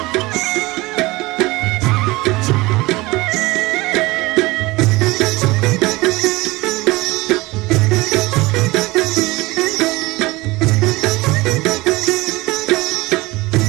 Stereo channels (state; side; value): quieter; left; 21.4 dB